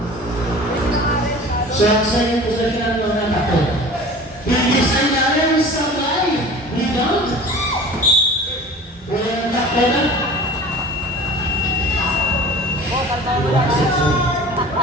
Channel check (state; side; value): normal; both; correlation 0.41